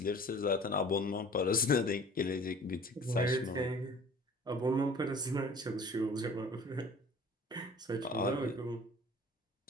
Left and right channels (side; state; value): both; normal; correlation 0.47